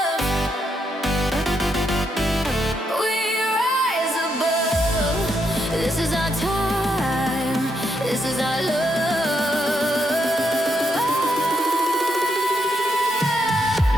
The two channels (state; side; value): normal; both; correlation 0.79